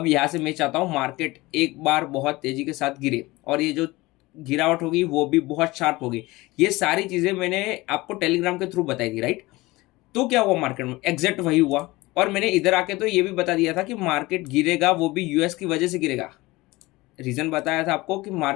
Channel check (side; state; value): right; quieter; 20.8 dB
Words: यहाँ से मैं चाहता हूँ मार्केट एक बार बहुत तेज़ी के साथ गिरे और ये जो गिरावट होगी वो भी बहुत शार्प होगी। ये सारी चीज़ें मैंने आपको टेलीग्राम के थ्रू बताई थी, राइट। तो क्या हुआ मार्केट में, एग्जैक्ट वही हुआ। और मैंने इधर आके तो ये भी बता दिया था कि मार्केट गिरेगा, वो भी यूएस की वजह से गिरेगा। रीजन बताया था आपको कि